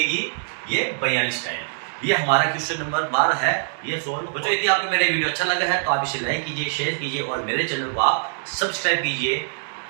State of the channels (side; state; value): left; silent; 63 dB below the other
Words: ये 42 टाइल। ये हमारा क्वेश्चन नंबर 12 है, ये सोल्व। बच्चों यदि आपको मेरा वीडियो अच्छा लगा है तो आप इसे लाइक कीजिए, शेयर कीजिए और मेरे चैनल को आप सब्सक्राइब कीजिए।